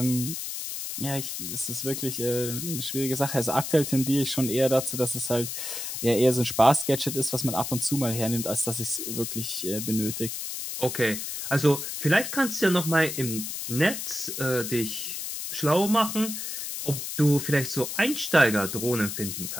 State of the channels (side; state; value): left; noise; hiss, 5 dB below the sound